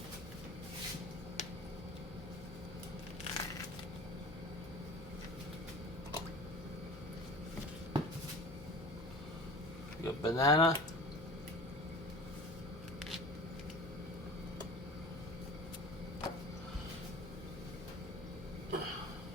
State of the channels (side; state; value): left; noise; hum, 14 dB below the sound